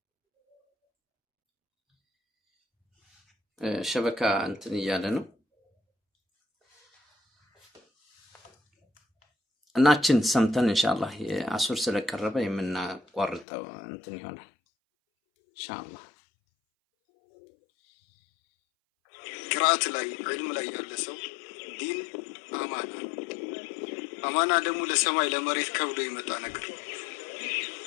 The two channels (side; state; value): right; drops out; at 13.5 s